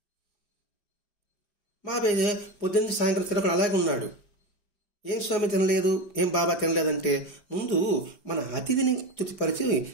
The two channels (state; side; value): late; right; 5.3 ms